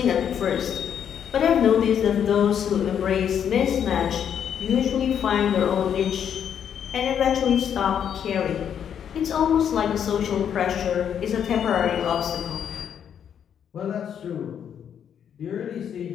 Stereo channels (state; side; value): quieter; right; 8.6 dB